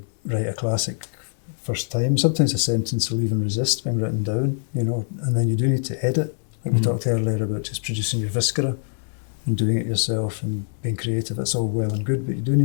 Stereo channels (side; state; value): right; silent; 63 dB below the other